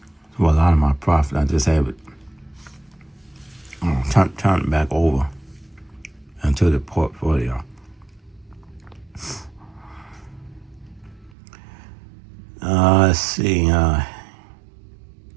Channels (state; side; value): drops out; left; at 11.3 s